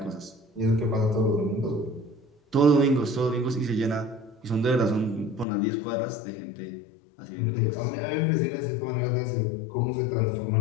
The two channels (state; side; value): drops out; right; at 5.5 s